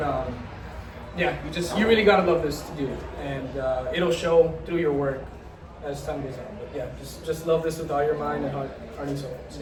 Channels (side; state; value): both; identical; correlation 1.00